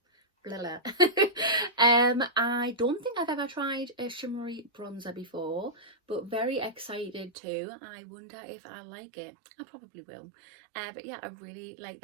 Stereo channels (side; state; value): left; drops out; at 7.3 s